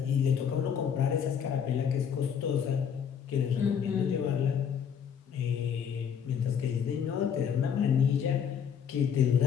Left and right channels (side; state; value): right; quieter; 7.7 dB